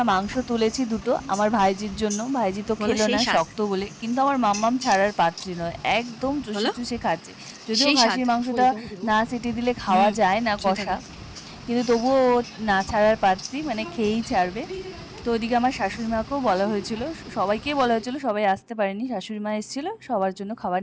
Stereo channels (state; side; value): identical; both; correlation 1.00